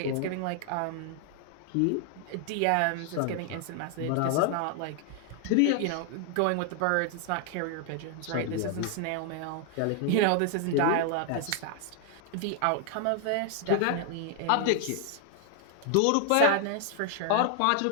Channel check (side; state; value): both; different; correlation 0.00